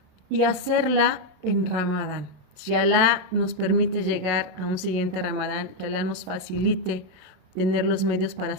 y hacerla en Ramadán. Si Allah nos permite llegar a un siguiente Ramadán, que Allah nos facilite tener los medios para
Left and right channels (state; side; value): late; left; 27 ms